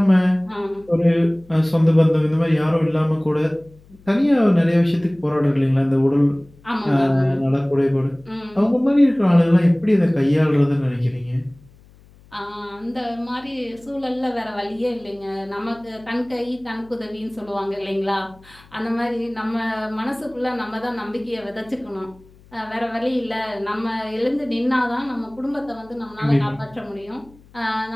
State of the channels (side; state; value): left; noise; hum, 26 dB below the sound